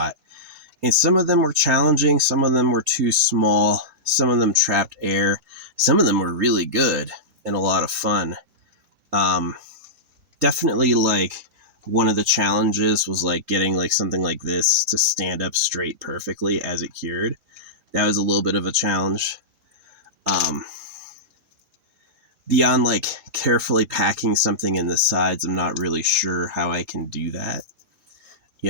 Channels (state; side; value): late; left; 3.8 ms